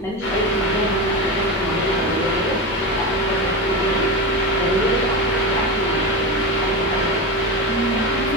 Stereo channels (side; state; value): both; normal; correlation 0.19